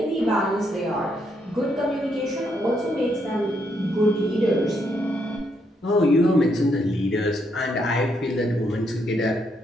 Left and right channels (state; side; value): normal; both; correlation 0.76